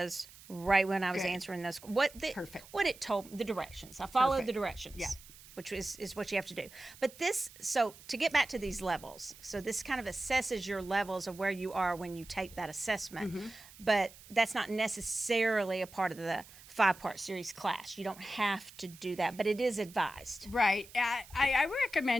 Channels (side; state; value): right; noise; hiss, 20 dB below the sound